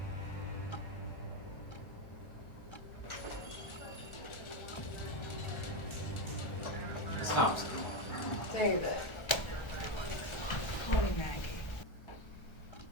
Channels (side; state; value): right; late; 1.3 ms